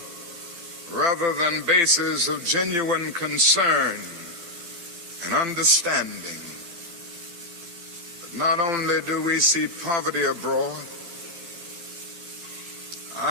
rather than bases of genuine concern and understanding. But not only do we see poverty abroad,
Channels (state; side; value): late; right; 4.5 ms